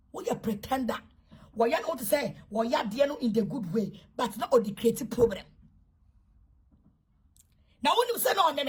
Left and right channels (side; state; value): both; identical; correlation 1.00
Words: We are pretender. Why you not to say, why you are in the good way, but not on the creative problem. Now, when you say no,